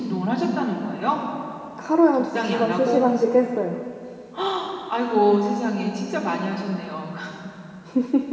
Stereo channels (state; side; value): identical; both; correlation 1.00